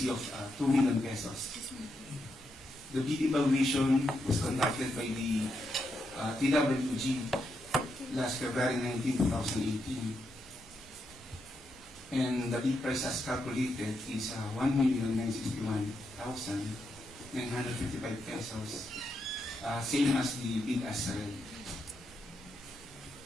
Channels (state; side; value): normal; both; correlation 0.82